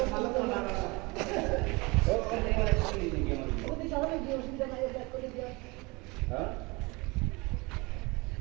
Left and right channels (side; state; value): left; quieter; 25.7 dB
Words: ভালো করে মারা ওদি সামনে যে অসুবিধা নাই ব্যাক করে দিয়া হ্যাঁ